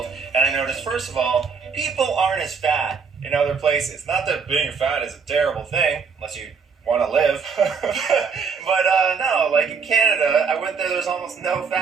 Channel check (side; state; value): left; quieter; 5.6 dB